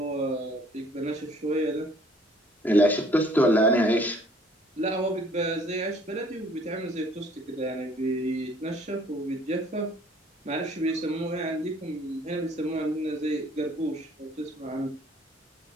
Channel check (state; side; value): normal; both; correlation 0.58